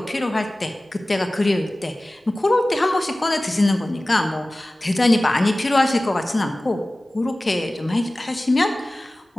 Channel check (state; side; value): normal; both; correlation 0.97